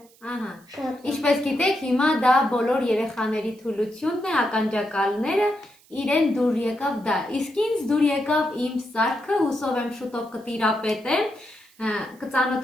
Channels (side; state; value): right; noise; hiss, 29 dB below the sound